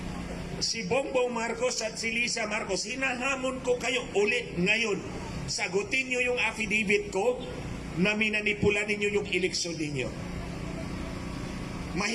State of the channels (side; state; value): both; identical; correlation 1.00